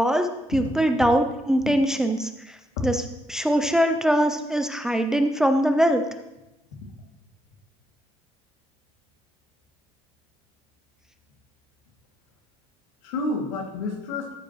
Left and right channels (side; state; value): both; normal; correlation 0.81